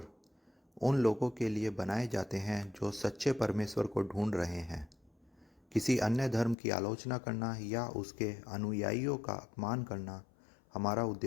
उन लोगों के लिए बनाए जाते हैं जो सच्चे परमेश्वर को ढूंढ रहे हैं। किसी अन्य धर्म की आलोचना करना या उसके अनुयायियों का अपमान करना हमारा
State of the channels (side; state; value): right; drops out; at 6.6 s